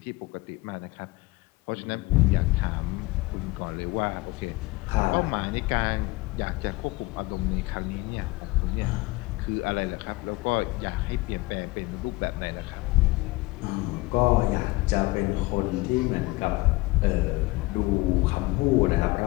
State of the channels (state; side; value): quieter; right; 21.8 dB